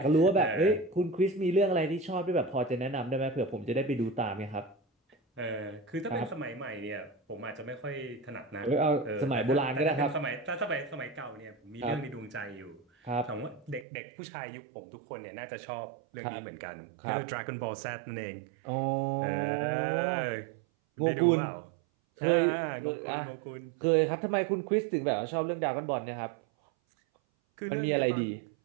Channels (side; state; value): left; drops out; at 13.9 s